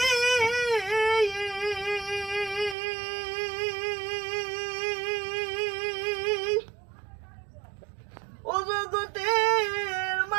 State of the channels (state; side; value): drops out; left; at 2.8 s